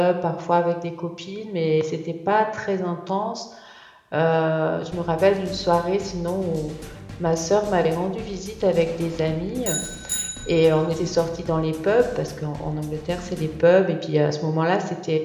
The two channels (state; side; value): identical; both; correlation 1.00